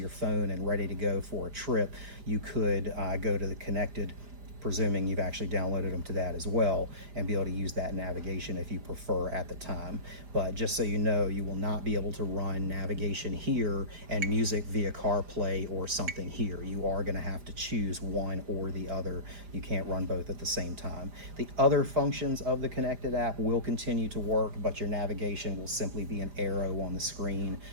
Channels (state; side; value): late; left; 4.9 ms